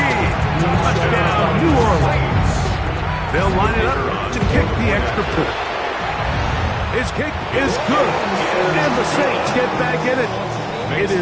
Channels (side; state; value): both; identical; correlation 1.00